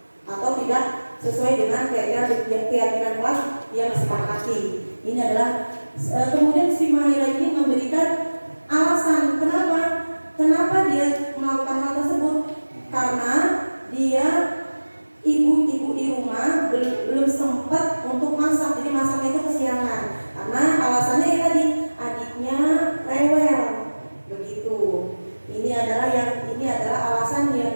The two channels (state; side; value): inverted; both; correlation -1.00